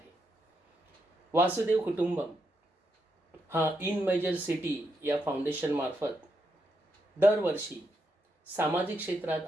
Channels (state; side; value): normal; both; correlation 0.81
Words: वासुदेव कुटुंबम हा इन मेजर सिटी या फाउंडेशन मार्फत दरवर्षी सामाजिक क्षेत्रात